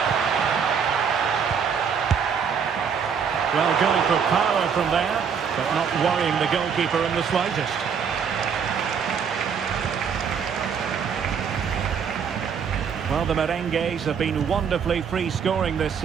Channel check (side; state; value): left; quieter; 6.8 dB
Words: Well, going for power from there, but not worrying the goalkeeper in the slightest. Well, the Merengues have been wonderfully free-scoring this